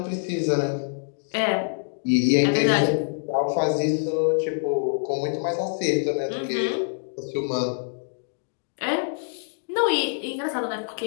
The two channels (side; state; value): right; silent; digital silence